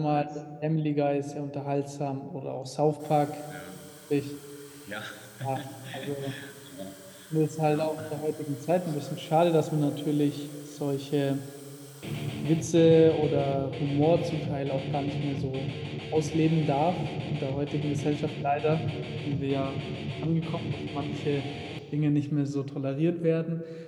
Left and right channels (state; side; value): identical; both; correlation 1.00